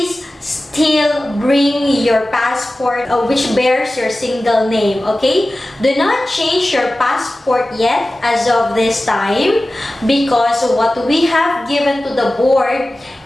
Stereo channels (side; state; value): both; normal; correlation 0.96